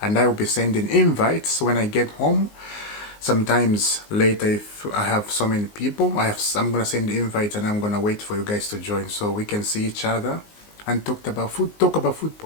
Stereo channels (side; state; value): right; late; 19 ms